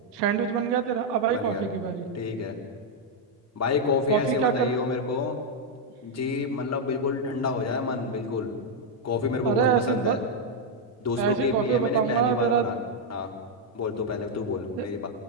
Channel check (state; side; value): normal; both; correlation -0.01